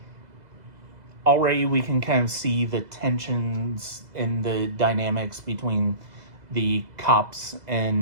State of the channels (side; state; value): left; late; 2.0 ms